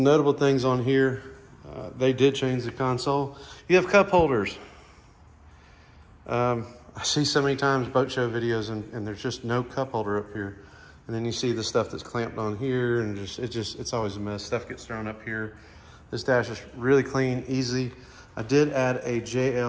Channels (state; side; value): identical; both; correlation 1.00